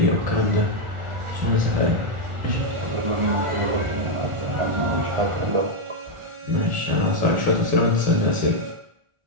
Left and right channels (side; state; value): left; late; 1.4 ms